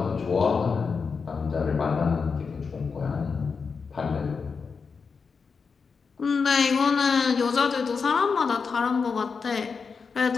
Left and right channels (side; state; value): right; quieter; 5.3 dB